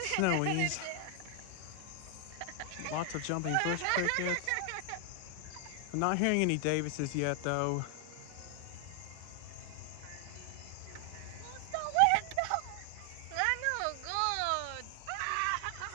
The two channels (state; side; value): different; both; correlation 0.00